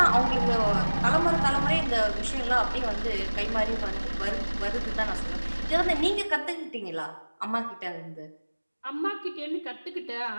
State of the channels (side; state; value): both; inverted; correlation -1.00